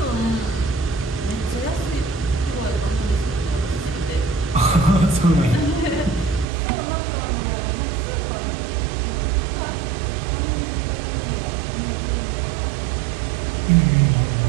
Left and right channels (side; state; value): left; drops out; at 6.5 s